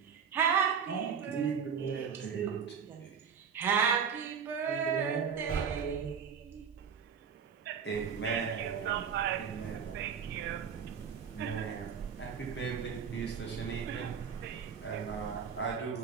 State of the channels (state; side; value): quieter; left; 6.9 dB